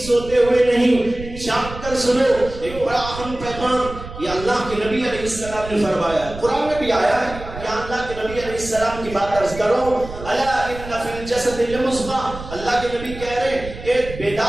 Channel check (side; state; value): right; noise; rumble, 12 dB below the sound